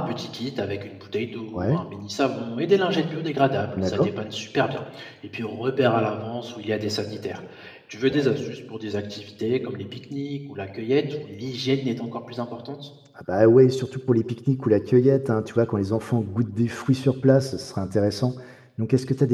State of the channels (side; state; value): both; identical; correlation 1.00